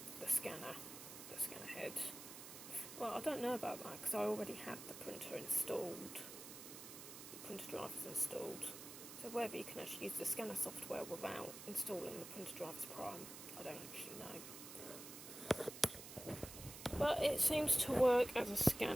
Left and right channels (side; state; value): right; noise; hiss, 11 dB below the sound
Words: the scanner head. Well, I don't know about that because I already had the printer installed, the printer drivers installed. So whether you can actually use the scanner software without installing the printer drivers prime, I don't actually know. But it seems to work as a